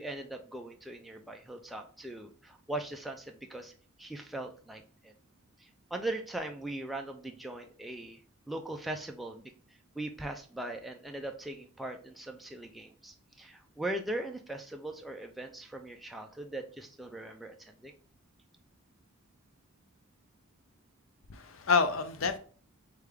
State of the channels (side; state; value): both; normal; correlation 0.18